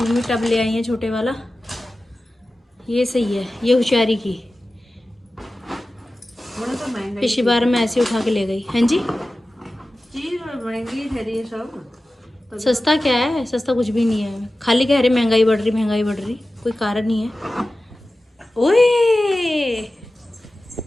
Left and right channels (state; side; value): normal; both; correlation 0.95